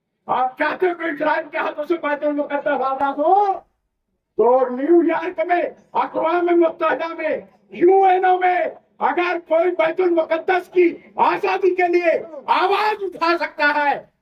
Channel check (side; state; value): both; identical; correlation 1.00